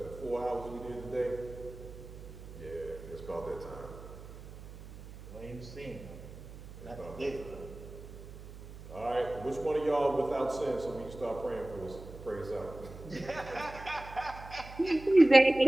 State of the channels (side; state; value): right; noise; hum, 14 dB below the sound